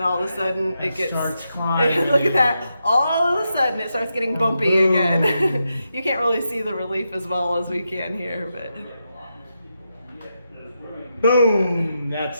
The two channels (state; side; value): inverted; both; correlation -0.85